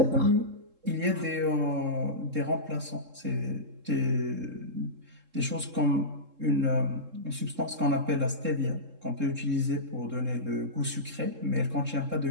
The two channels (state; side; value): late; left; 3.7 ms